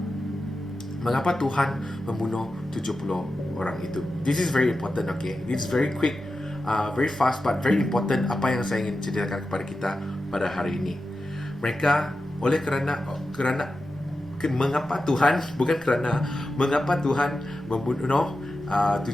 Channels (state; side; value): normal; both; correlation 0.91